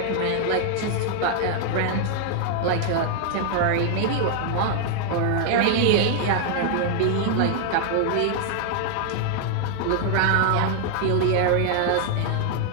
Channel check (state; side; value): different; both; correlation 0.00